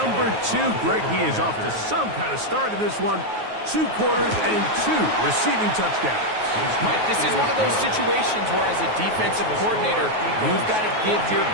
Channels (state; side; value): late; left; 9.4 ms